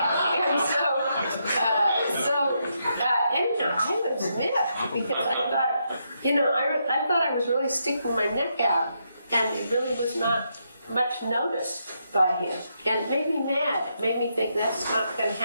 Anyhow, I was miffed because I thought, you know, I thought I was really sticking my neck out, and it really was not much noticed by him. And it made me mad. It made me think that's not going to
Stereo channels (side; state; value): both; inverted; correlation -0.80